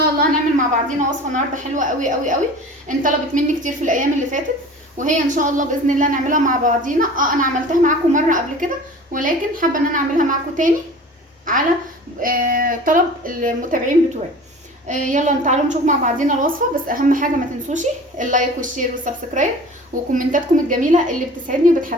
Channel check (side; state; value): both; normal; correlation 0.41